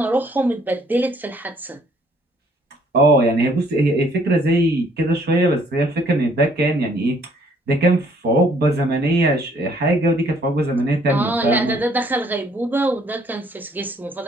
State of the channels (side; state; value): both; normal; correlation 0.63